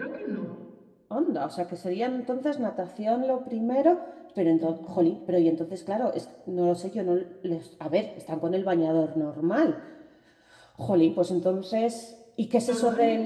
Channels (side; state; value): both; identical; correlation 1.00